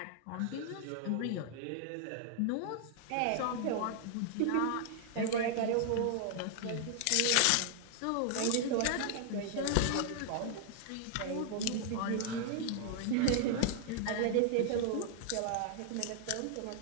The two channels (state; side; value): different; both; correlation 0.00